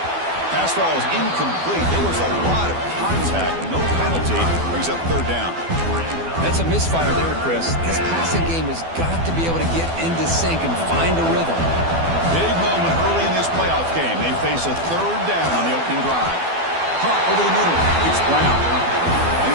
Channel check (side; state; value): left; late; 12 ms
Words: Pass ball is incomplete. There was a lot of contact. No penalty. Brings up 3rd down. That's a misfire there, Chris. This passing game has got to be able to get into sync and find a rhythm. Big moment early in this playoff game. They face a 3rd down on the opening drive. Caught over the middle. It's Brown. And